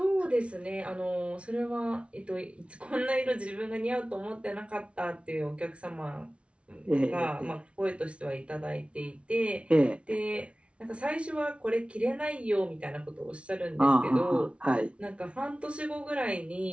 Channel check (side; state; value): left; late; 0.060 ms